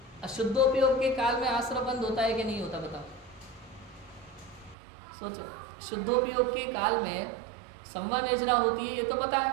अशुद्धोपयोग के काल में आश्रम बंद होता है कि नहीं होता, बताओ, सोचो। शुद्धोपयोग के काल में संवर निर्जरा होती है, ये तो पता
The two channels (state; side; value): drops out; left; at 4.8 s